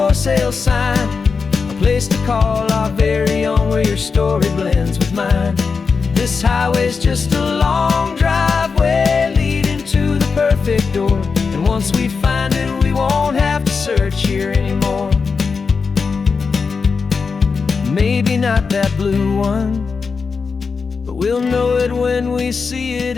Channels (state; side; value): quieter; right; 5.1 dB